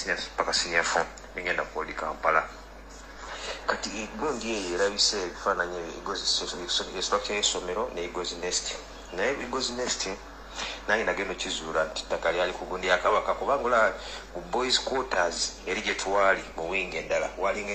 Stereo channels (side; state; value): both; identical; correlation 1.00